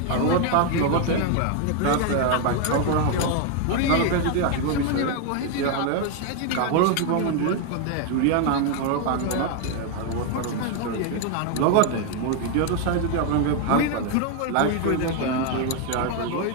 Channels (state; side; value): different; both; correlation 0.01